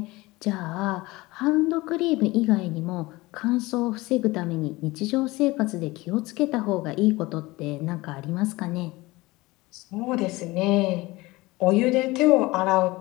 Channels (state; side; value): quieter; right; 21.0 dB